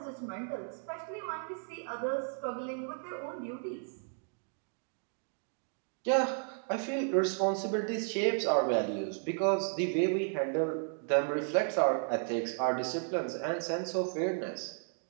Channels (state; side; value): silent; left; 55 dB below the other